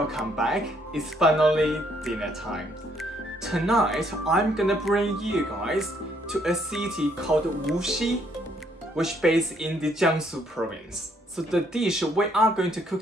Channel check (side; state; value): both; normal; correlation 0.69